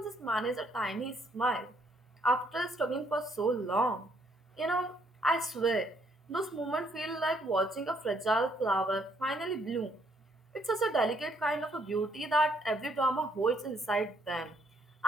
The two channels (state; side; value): normal; both; correlation 0.70